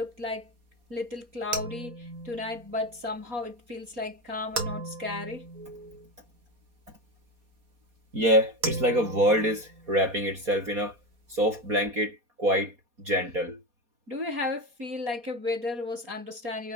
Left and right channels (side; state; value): left; late; 4.2 ms